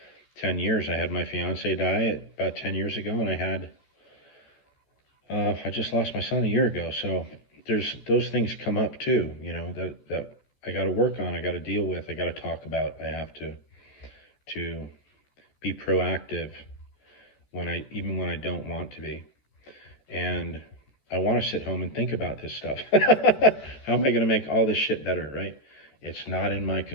10 years. I had my fiance die about 10 years ago, and I just lost my son a year ago. So there's those things come up too, that I got to work on, I got to deal with, I got to talk about. I have to be proactive even when I don't want to be. And I want to sit home and think about this stuff. How am I going to make all this shit better, right? It's not in my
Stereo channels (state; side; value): late; right; 14 ms